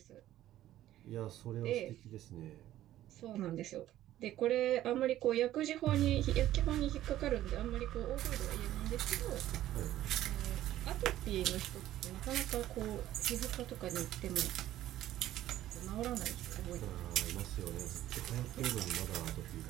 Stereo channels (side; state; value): left; quieter; 13.5 dB